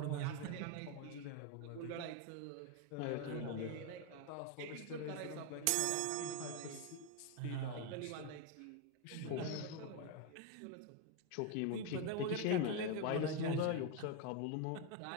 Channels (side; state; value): both; different; correlation 0.02